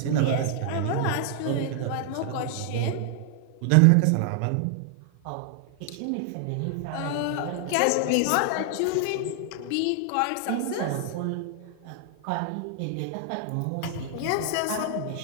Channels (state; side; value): different; both; correlation 0.00